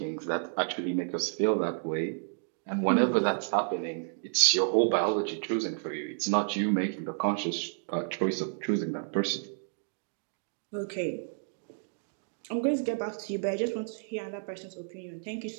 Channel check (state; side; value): silent; left; digital silence